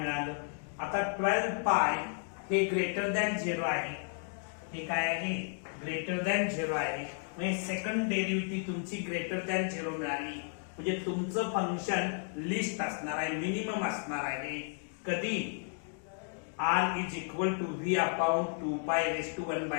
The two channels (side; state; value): right; silent; 56 dB below the other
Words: आता 12 पाय हे ग्रेटर दॅन 0 आहे हे काय आहे ग्रेटर दॅन 0 आहे म्हणजे सेकंड डेरिव्हेटिव्ह तुमची ग्रेटर दॅन 0 मिळाली म्हणजे तुमचं फंक्शन लिस्ट असणार आहे मिनिमम असणार आहे कधी r is equal to v upon 2 pi raise to